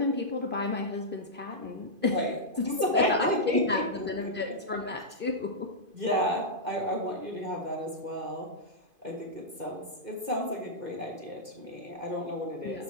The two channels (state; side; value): late; left; 2.5 ms